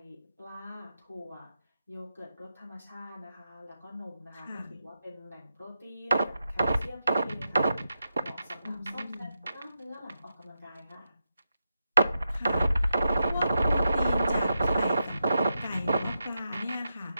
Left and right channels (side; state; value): both; inverted; correlation -0.87